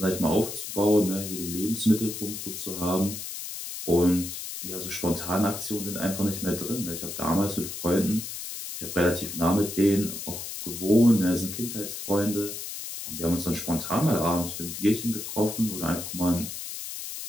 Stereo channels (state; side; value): noise; left; hiss, 7 dB below the sound